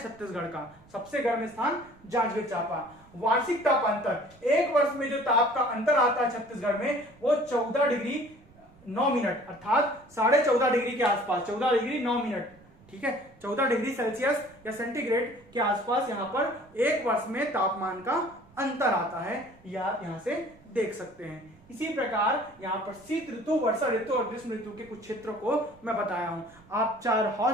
छत्तीसगढ़ का, सबसे गर्म स्थान जांजगीर चांपा। वार्षिक ताप अंतर, एक वर्ष में जो ताप का अंतर आता है छत्तीसगढ़ में वो 14 डिग्री 9 मिनट अर्थात 14.5 डिग्री के आसपास, 14 डिग्री 9 मिनट, ठीक है, 14 डिग्री सेल्सियस या सेंटीग्रेड के आसपास यहां पर एक वर्ष में तापमान का अंतर आता है, या आप यहां से देख सकते हैं। इसी प्रकार यहां पर शीत ऋतु, वर्षा ऋतु और ग्रीष्म ऋतु के कुछ क्षेत्रों को मैं बताया हूं। आप 4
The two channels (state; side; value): noise; right; rumble, 27 dB below the sound